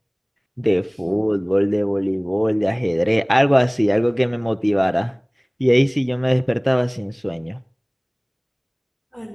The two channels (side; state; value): both; identical; correlation 1.00